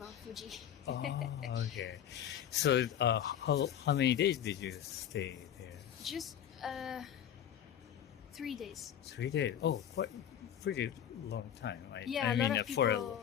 Fuji. Oh, okay. So how many days did you stay there? Just 3 days. 3 days. Oh, quite pretty long time. Yeah, a lot of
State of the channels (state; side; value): quieter; right; 9.8 dB